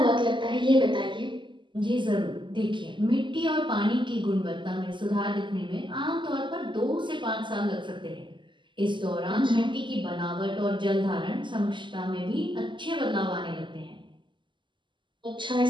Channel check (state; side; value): late; left; 0.24 ms